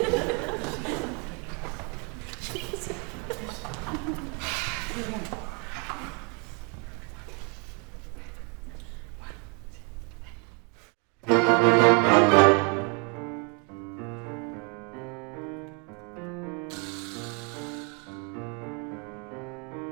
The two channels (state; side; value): quieter; left; 33.3 dB